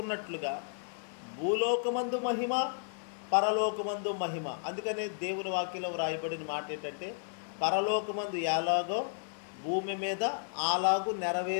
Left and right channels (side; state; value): right; silent; digital silence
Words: భూలోకమందు మహిమ, పరలోకమందు మహిమ. అందుకనే దేవుని వాక్యంలో రాయబడిన మాట ఏంటంటే పరలోకమందు ఎలాగో భూమి మీద అలాగూ